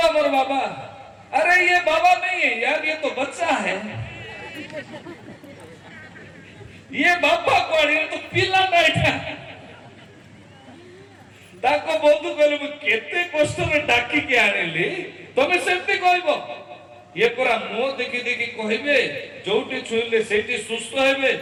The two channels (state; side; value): identical; both; correlation 1.00